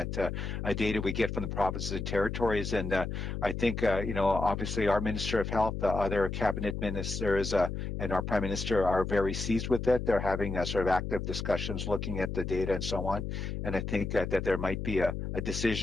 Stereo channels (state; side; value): noise; left; hum, 4 dB below the sound